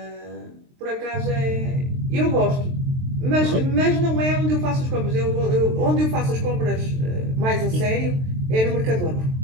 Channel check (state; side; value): late; left; 23 ms